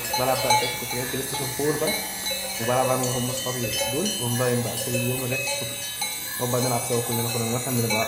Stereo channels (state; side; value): identical; both; correlation 1.00